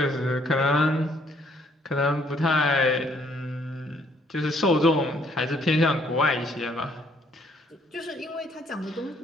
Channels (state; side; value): normal; both; correlation 0.66